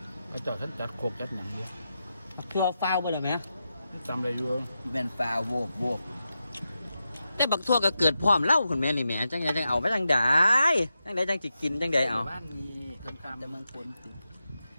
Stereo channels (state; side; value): inverted; both; correlation -0.88